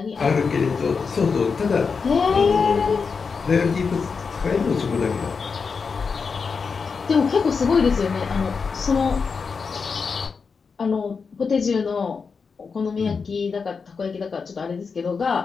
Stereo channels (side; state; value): right; quieter; 5.3 dB